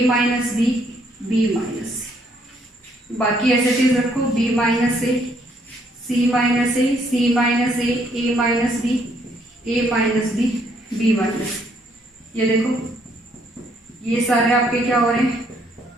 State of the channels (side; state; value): both; normal; correlation 0.69